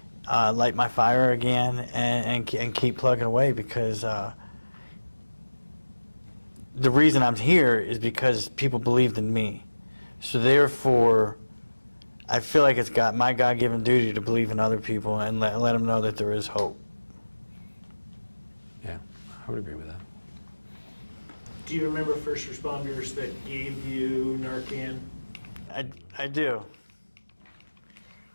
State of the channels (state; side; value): inverted; both; correlation -1.00